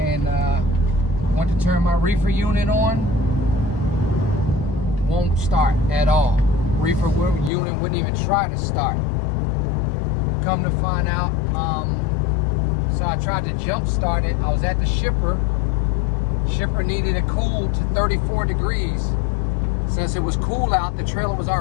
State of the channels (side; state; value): right; drops out; at 7.5 s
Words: went to turn my reefer unit on. Won't start at all. Reefer unit wouldn't even try to start. Come to find out, so I tried to jump start it. I was at the shipper. Shipper needed it cooled to 34 degrees. Since it was cool out, the trailer was